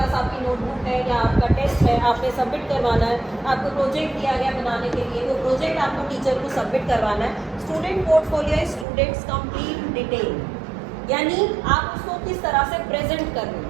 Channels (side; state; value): left; drops out; at 8.8 s